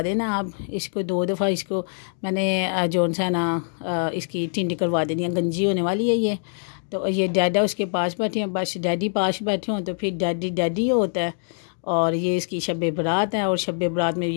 देना आप। इसको 2 दफ़ा इसको मैंने जो सा ना इसकी टिंडी करवा देनी है, गंजी होने वाली है ये। तो ये डैडा उसके पास बैठे हैं, बस डैडी पास बैठे हों तो फिर डैडी डैडी होता है। और ये इसकी शब बरात है और शब बरात में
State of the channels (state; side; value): silent; right; digital silence